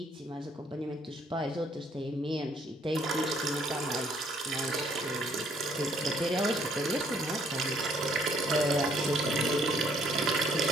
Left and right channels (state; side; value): normal; both; correlation 0.65